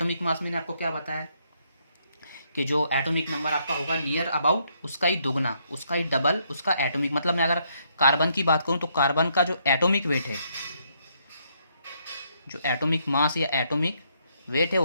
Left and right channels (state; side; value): inverted; both; correlation -0.73